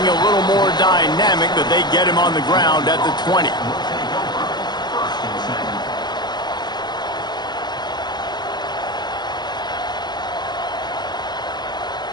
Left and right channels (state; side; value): late; right; 0.21 ms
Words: a little more dynamic, but they get him on the ground at the 20.